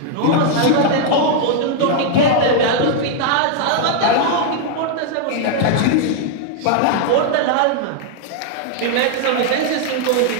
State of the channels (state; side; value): different; both; correlation 0.00